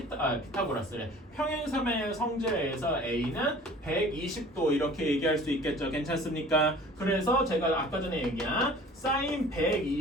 평행삼의 성질에서 A는 120도 이렇게 얘기할 수 있겠죠. 괜찮습니까? 그래서 제가 아까 전에 얘기한 사인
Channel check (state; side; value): normal; both; correlation 0.46